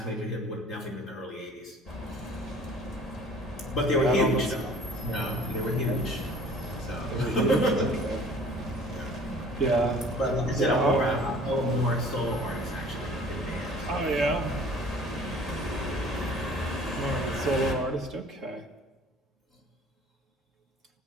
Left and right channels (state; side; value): normal; both; correlation 0.49